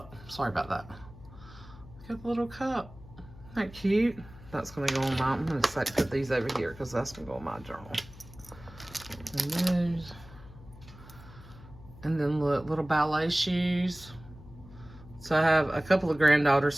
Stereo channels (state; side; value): noise; left; hum, 19 dB below the sound